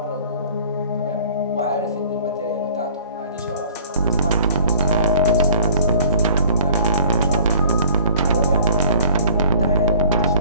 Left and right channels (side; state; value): both; inverted; correlation -0.50